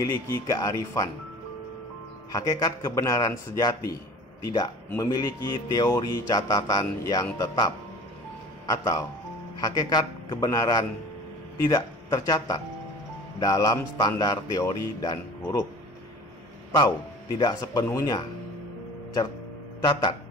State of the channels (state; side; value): normal; both; correlation 0.43